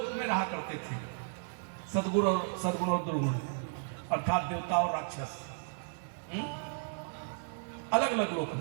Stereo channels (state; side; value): silent; left; digital silence